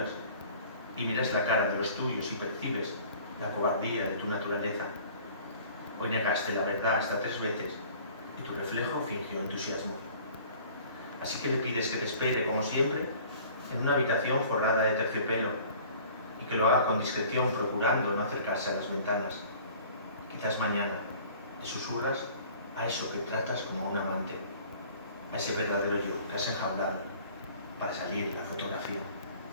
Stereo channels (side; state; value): both; inverted; correlation -0.49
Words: y miras la cara de los tuyos y percibes la cobardía de tu naturaleza. Hoy negaste la verdad hasta 3 veces, y tu reflejo fingió entusiasmo. Así que le pides que te espere, como siempre, en una habitación forrada de terciopelo, y que lo haga con discreción, procurando no acercarse a las ventanas. Quizás mañana le susurras a eso que tratas como a un amante, a ese verdadero yo que has enjaulado para salir en la fotografía.